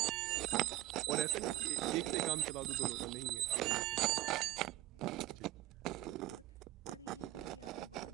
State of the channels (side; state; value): left; quieter; 16.2 dB